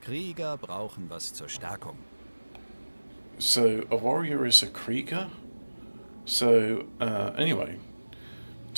Krieger brauchen was zur Stärkung. So, a warrior is a Krieger? So, anyway.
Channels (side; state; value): both; inverted; correlation -1.00